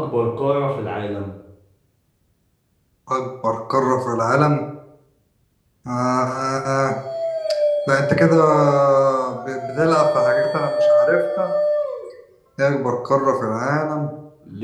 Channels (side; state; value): both; identical; correlation 1.00